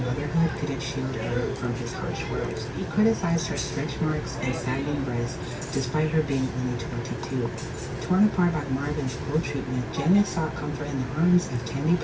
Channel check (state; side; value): identical; both; correlation 1.00